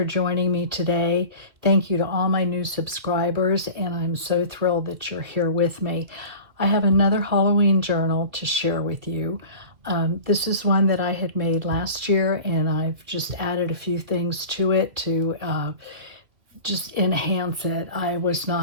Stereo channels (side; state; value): left; late; 2.0 ms